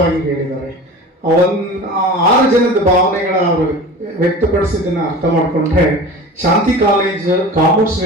ಹೇಳಿದ್ದಾರೆ. 6 ಜನದ ಭಾವನೆಗಳ ಅವರು ವ್ಯಕ್ತಪಡಿಸಿದ್ದನ್ನು ಅರ್ಥ ಮಾಡಿಕೊಂಡ್ರೆ ಶಾಂತಿ ಕಾಲೇಜ್ ಕಾಮರ್ಸ್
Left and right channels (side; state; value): both; normal; correlation 0.36